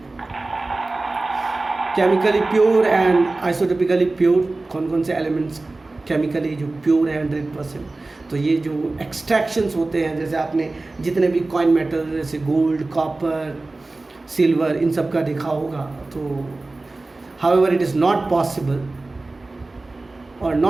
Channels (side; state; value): left; quieter; 3.2 dB